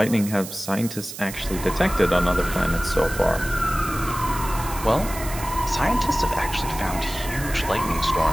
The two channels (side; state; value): right; noise; hiss, 11 dB below the sound